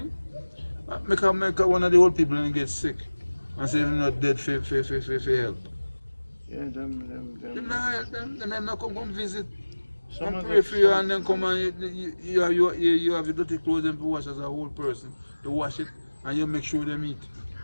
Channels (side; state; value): both; inverted; correlation -1.00